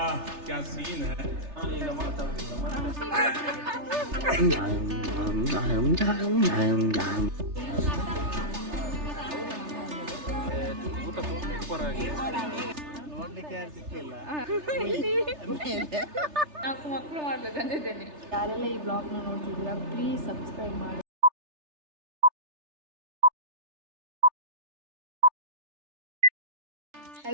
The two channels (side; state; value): left; late; 3.3 ms